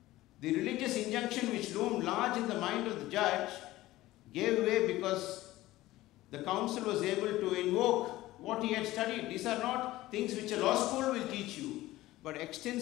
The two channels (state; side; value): quieter; right; 16.9 dB